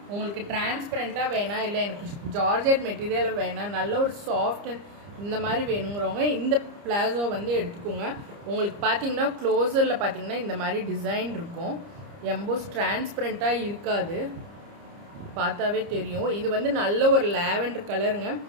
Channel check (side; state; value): left; late; 30 ms